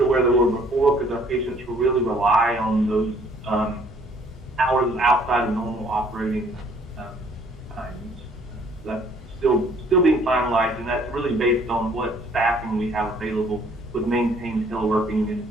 where they were before, because our patients will really rely on those hours outside of normal operating times. That's still being finalized, and that's really based on what staffing we have available with maintained teleworking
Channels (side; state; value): both; normal; correlation 0.60